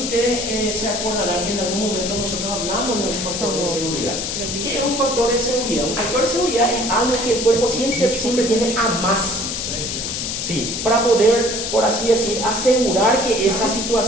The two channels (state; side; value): noise; left; hiss, 3 dB below the sound